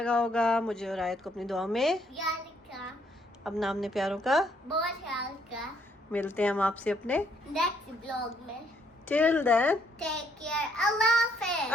होगा। मुझे और आयत को अपनी दुआ में याद रखा, अपना हमने प्यारों का बहुत ख्याल का। मिलते हैं हम आपसे अपने नेक्स्ट ब्लॉग में। टिल देन टेक केयर, अल्लाह हाफिज़।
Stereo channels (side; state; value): both; normal; correlation 0.69